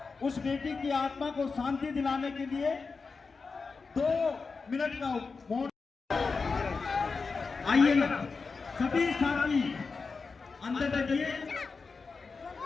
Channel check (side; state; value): right; quieter; 4.6 dB